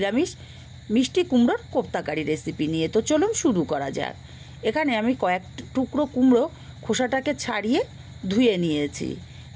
মিষ্টি কুমড়োর কোপ্তাকারি রেসিপি নিয়ে। তো চলুন শুরু করা যাক। এখানে আমি কয়েক টুকরো কুমড়ো খোসাটাকে ছাড়িয়ে ধুয়ে নিয়েছি।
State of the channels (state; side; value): identical; both; correlation 1.00